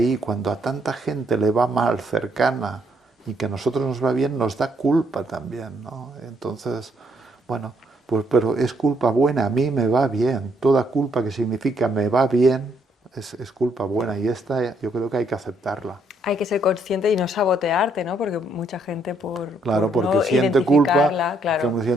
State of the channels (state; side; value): normal; both; correlation 0.71